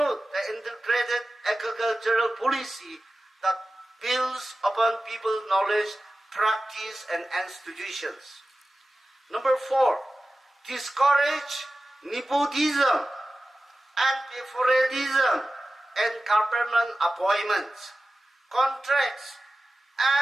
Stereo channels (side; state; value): both; normal; correlation 0.95